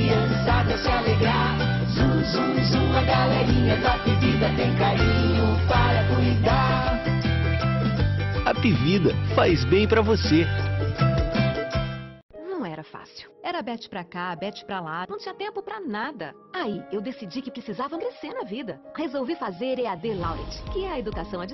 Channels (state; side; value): identical; both; correlation 1.00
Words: se alegrar. Zum, zum, zum, a galerinha da bebida tem carinho para cuidar. A Pivida faz bem pra você. Não era fácil. Era bete pra cá, bete pra lá, não tinha tempo pra nada. Aí, eu decidi que precisava crescer na vida. Resolvi fazer EAD Laureate, que é a educação à